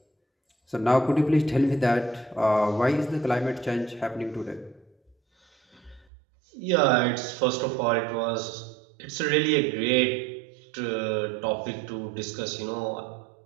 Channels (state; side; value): drops out; left; at 6.1 s